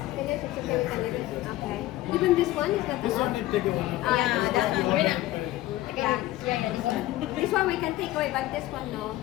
finish. It's okay, we can leave it. Okay. Even this one is not This one allowed. you take it one. Yeah, that one. Wait Yeah. This one we can take away, but this one no.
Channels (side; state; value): right; quieter; 16.1 dB